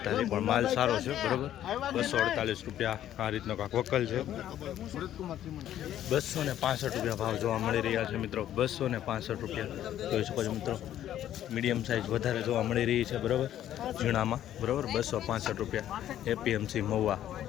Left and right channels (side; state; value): right; quieter; 11.7 dB